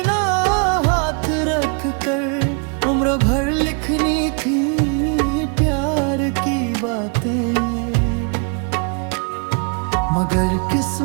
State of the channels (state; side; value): quieter; left; 37.4 dB